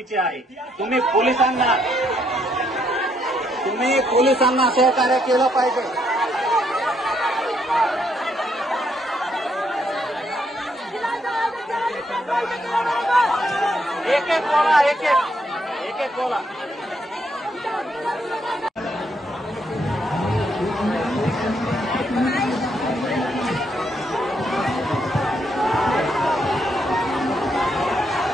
आहे. तुम्ही पोलिसांना सहकार्य केलं पाहिजे. एक एक बोला.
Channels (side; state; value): both; normal; correlation 0.74